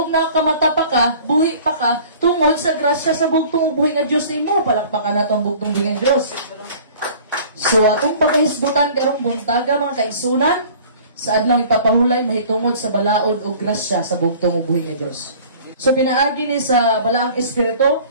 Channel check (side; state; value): both; inverted; correlation -0.48